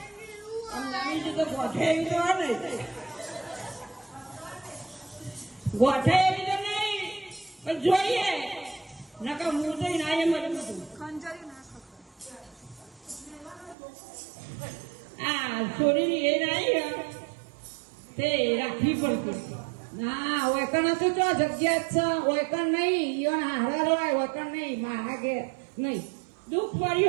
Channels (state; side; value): drops out; left; at 13.8 s